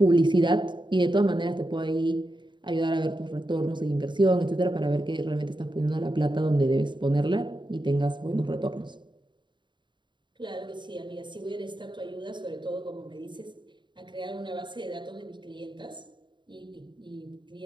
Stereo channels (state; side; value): late; left; 0.23 ms